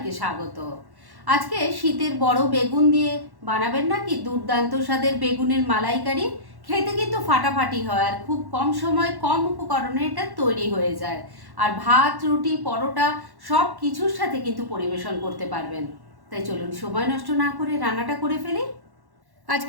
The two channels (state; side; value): late; left; 1.1 ms